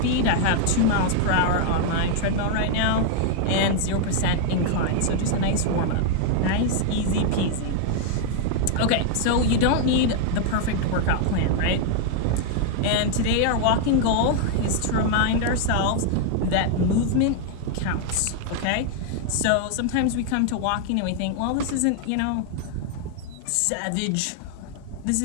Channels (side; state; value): both; different; correlation 0.00